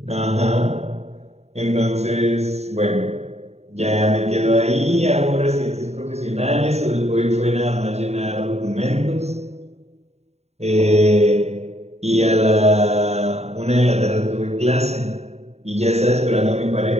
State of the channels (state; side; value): late; left; 0.31 ms